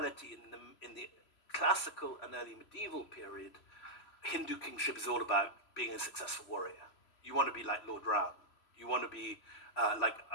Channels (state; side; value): late; right; 3.0 ms